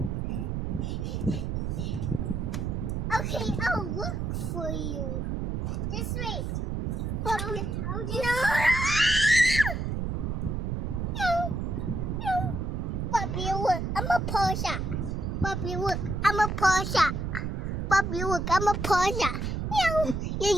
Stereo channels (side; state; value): right; noise; rumble, 2 dB below the sound